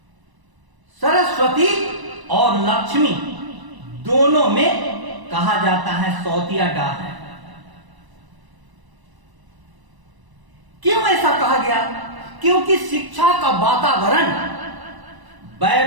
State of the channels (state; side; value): late; left; 1.0 ms